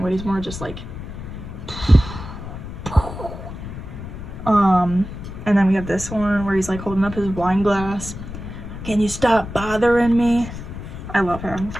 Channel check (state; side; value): noise; left; rumble, 10 dB below the sound